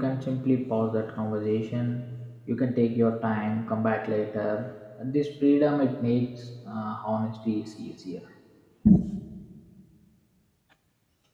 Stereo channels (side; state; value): both; identical; correlation 1.00